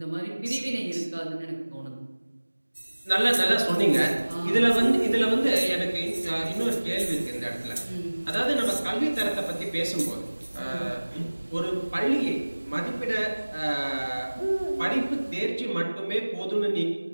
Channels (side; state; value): both; inverted; correlation -1.00